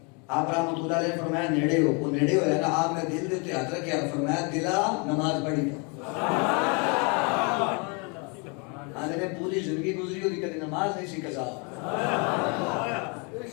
آپ رحمت اللہ علیہ نے فرمایا نیڑے ہو وہ نیڑے ہویا نا آپ نے دل دے ہاتھ رکھا فرمایا دلا نماز پڑھی آنے نے پوری زندگی گزری ہوتی کدی نماز نہیں سی قضا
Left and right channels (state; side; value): quieter; right; 33.4 dB